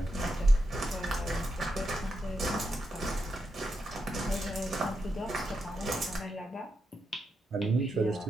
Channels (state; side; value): normal; both; correlation 0.85